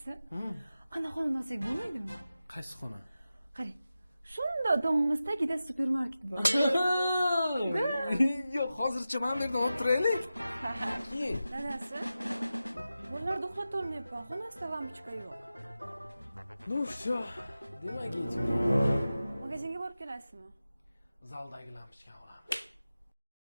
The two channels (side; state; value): both; inverted; correlation -0.93